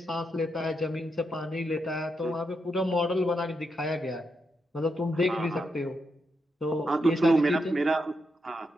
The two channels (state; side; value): normal; both; correlation 0.83